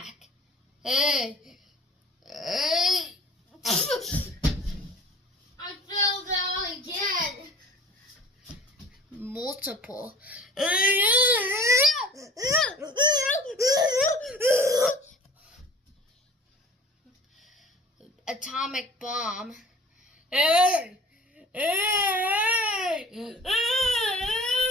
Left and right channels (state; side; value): normal; both; correlation 0.46